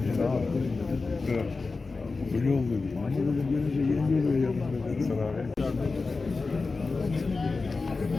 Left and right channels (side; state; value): right; quieter; 4.0 dB